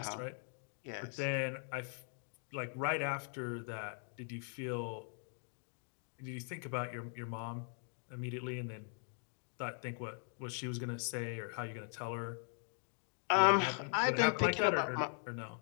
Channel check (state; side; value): silent; right; 51 dB below the other